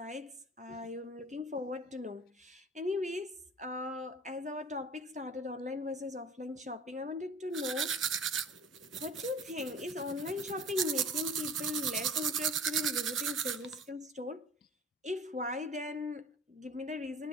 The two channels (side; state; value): both; normal; correlation 0.44